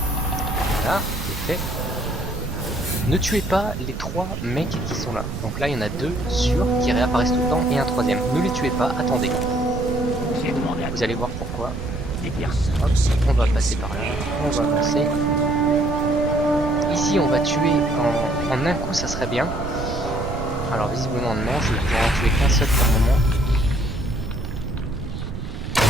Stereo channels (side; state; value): right; noise; rumble, 7 dB below the sound